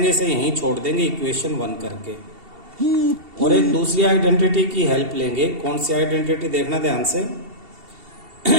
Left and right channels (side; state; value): left; late; 2.7 ms